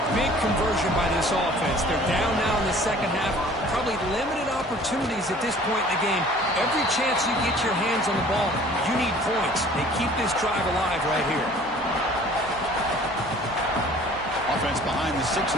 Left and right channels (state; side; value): noise; right; hum, 21 dB below the sound